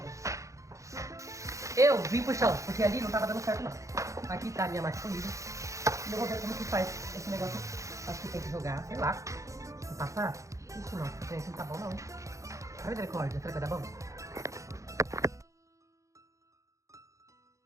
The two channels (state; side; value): late; left; 0.15 ms